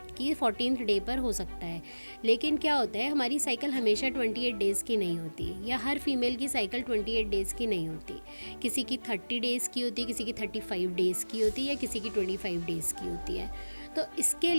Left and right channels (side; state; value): both; inverted; correlation -1.00